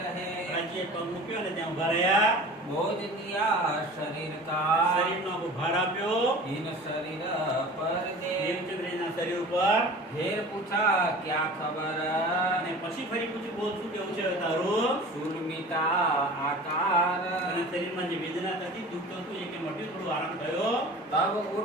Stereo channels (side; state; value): both; normal; correlation 0.40